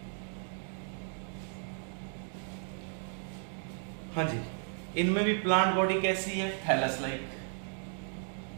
हाँ जी, इनमें भी प्लांट बॉडी कैसी है? Thallus like.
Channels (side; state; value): left; silent; 55 dB below the other